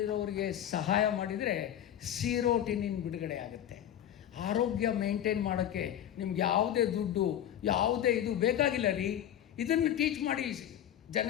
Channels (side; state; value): right; quieter; 10.8 dB